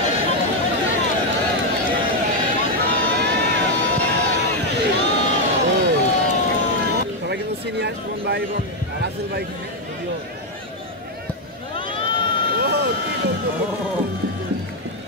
সবাই কিন্তু সিনিয়র সুমন ভাই এবং রাসেল ভাই ভিডিও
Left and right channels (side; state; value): both; normal; correlation 0.03